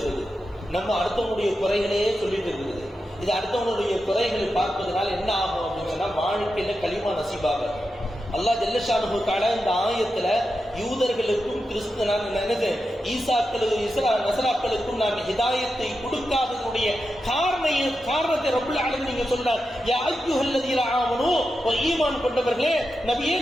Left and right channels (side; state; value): both; normal; correlation 0.89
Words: நம்ம அடுத்தவனுடைய குறைகளையே சொல்லிட்டு இருக்குது. இது அடுத்தவனுடைய குறைகளை பார்ப்பதனால என்ன ஆகும் அப்படின்னு சொன்னா வாழ்க்கையில களிமா நசீபாக. அல்லாஹ் ஜல்ல ஷானுஹு தஆலா இந்த ஆயத்துல யூதர்களுக்கும் நசராக்களுக்கும் நான் ஹிதாயத்தை கொடுக்காததுடைய காரணத்தை ரப்புல் ஆலமீன் நீங்க சொல்றார். யா அய்யுஹல்லதீன ஆமனூ, ஈமான் கொண்டவர்களே நபியே